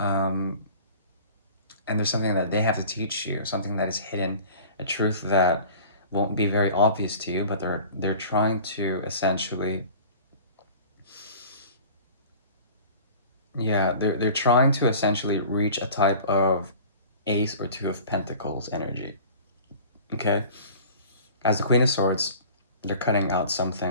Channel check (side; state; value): both; inverted; correlation -0.43